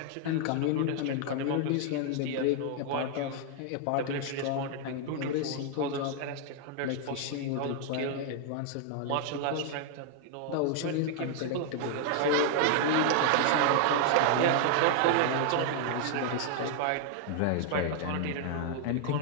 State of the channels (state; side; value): different; both; correlation 0.00